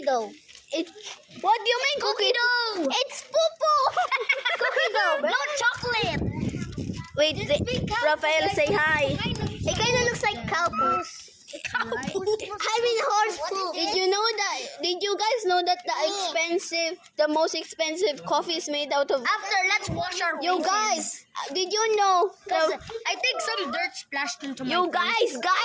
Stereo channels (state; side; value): identical; both; correlation 1.00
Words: dough. it. What do you mean cookie dough? It's poo-poo. Cookie dough, no chocolate. Wait, Rafael, say hi. It kind of looks like cow poo. I mean horse poo. Did you know that? Did did you guys know that the most expensive coffee is made out of? After, let's wash our You faces. guys, did you know? I think some dirt splashed into my You face.